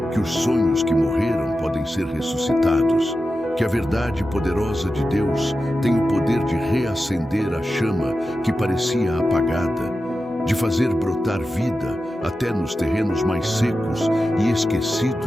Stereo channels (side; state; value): both; normal; correlation 0.92